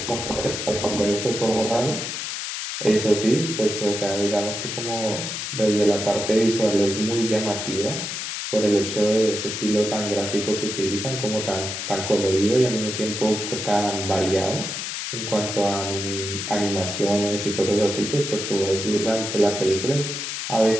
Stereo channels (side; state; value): left; noise; hiss, 5 dB below the sound